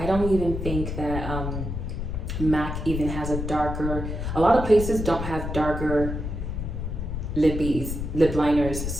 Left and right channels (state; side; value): noise; left; rumble, 4 dB below the sound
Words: don't even think that MAC even has a darker, a lot of places don't have darker lip liners,